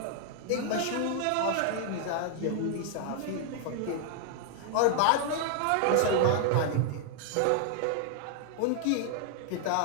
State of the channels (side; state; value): both; different; correlation 0.00